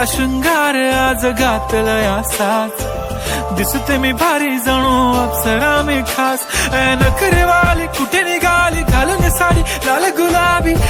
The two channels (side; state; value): both; identical; correlation 1.00